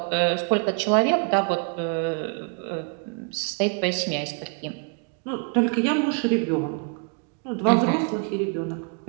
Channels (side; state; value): left; quieter; 38.1 dB